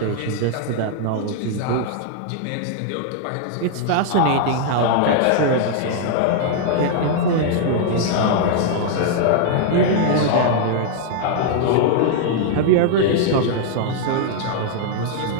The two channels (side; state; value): both; different; correlation -0.01